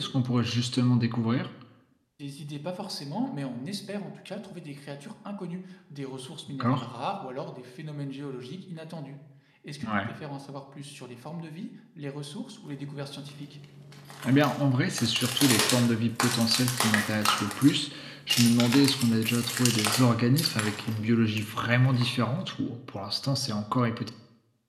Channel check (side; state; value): both; identical; correlation 1.00